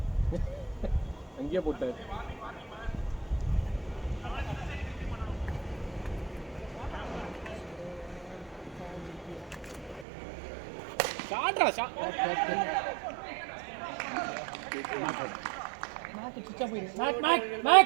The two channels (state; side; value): drops out; left; at 10.1 s